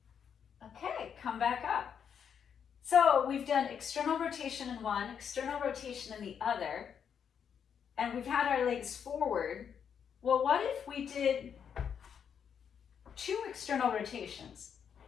Okay, come back up. So we've done external rotation in one, external rotation in the other, and we've had our legs forward. Well, what if we did 2 external rotations?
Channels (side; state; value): right; quieter; 7.6 dB